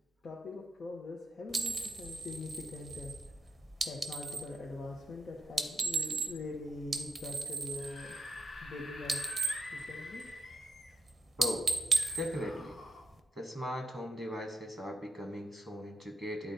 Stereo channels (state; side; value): normal; both; correlation 0.79